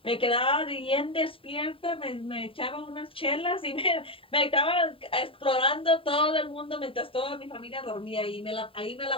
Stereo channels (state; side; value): late; right; 0.26 ms